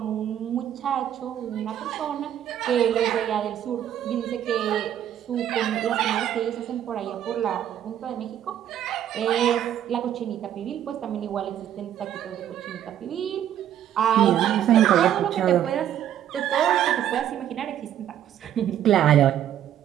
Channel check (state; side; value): quieter; left; 10.7 dB